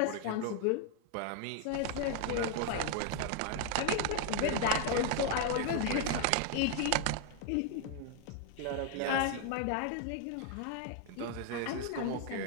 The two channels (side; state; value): both; different; correlation 0.00